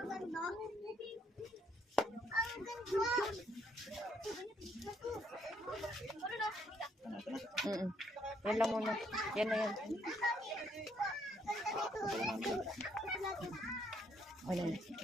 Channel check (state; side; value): normal; both; correlation 0.70